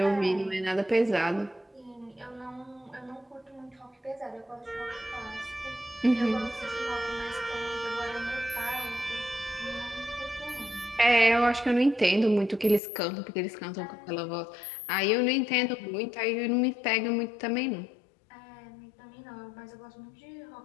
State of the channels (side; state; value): right; drops out; at 12.8 s